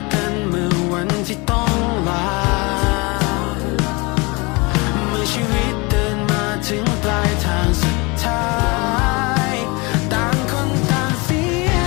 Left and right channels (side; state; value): right; quieter; 27.1 dB